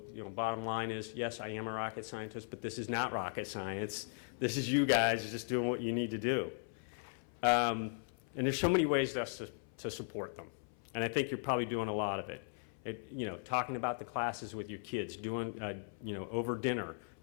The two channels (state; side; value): silent; right; 53 dB below the other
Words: bottom line is, yes, I am a rocket scientist, but this is not rocket science. This is you guys just doing what you need to do. And there's so many ways to support them. And I think you're probably doing a lot of it. Talking about the classes with your kids, doing, over dinner,